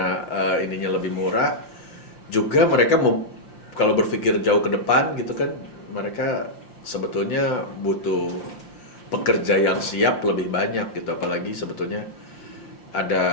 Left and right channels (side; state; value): right; late; 5.7 ms